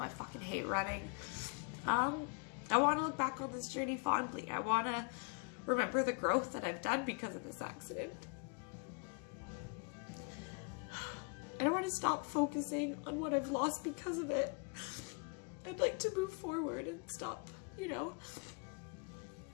fucking hate running. I want to look back on this journey fondly. I want to remember the growth that I've done because of this accident. I don't want to stop focusing on what I've lost because of it. I'd like to move forward and stop, you know,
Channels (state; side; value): quieter; right; 35.2 dB